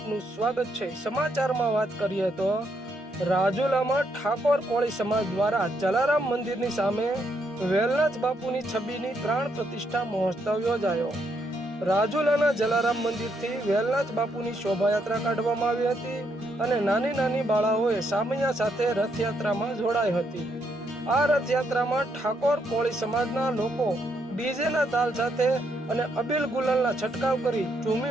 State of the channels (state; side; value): normal; both; correlation 0.76